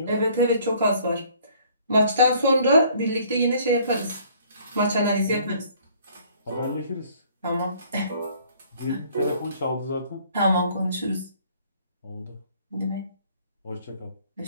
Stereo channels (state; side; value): inverted; both; correlation -0.58